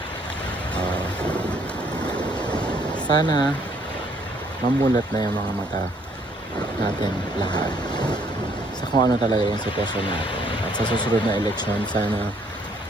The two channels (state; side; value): normal; both; correlation 0.65